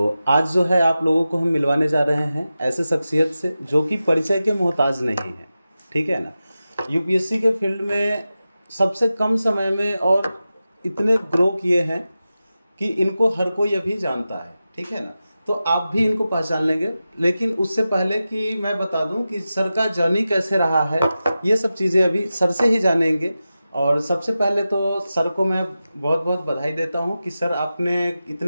आज जो है आप लोगों को हम मिलवाने जा रहे हैं ऐसे शख्सियत से जो कि परिचय के मोहताज नहीं है, ठीक है ना। यूपीएससी के फील्ड में सबसे कम समय में और इतने ग्रो किए हैं कि इनको हर कोई अभी जानता है, ठीक है ना। तो आप भी इनको पहचान लेंगे, लेकिन उससे पहले कि मैं बता दूं कि सर का जर्नी कैसे रहा है, ये सब चीज़ें अभी सर से ही जानेंगे। और सबसे पहले तो सर को मैं बहुत बहुत बधाई देता हूं कि सर आपने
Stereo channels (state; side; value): inverted; both; correlation -0.93